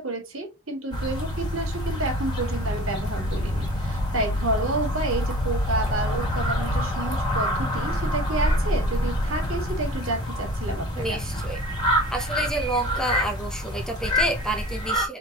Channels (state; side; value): normal; both; correlation 0.42